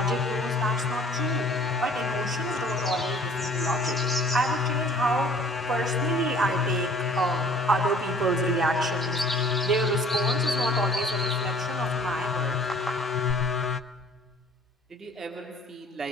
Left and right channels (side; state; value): both; normal; correlation 0.52